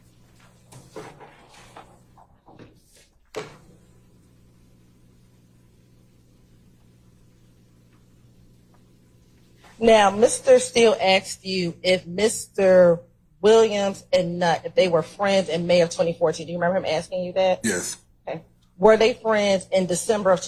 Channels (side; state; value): both; identical; correlation 1.00